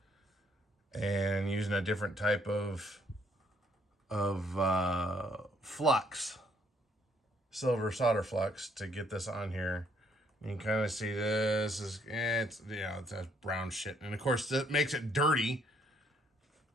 and using a different type of flux, silver solder flux, to get this on here. You can kind of see this is, it's that brown shit, and of course that makes it dirty,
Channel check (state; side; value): normal; both; correlation 0.67